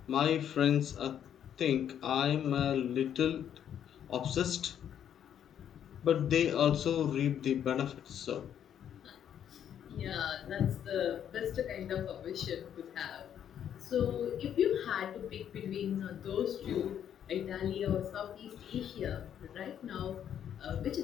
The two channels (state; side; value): quieter; right; 9.5 dB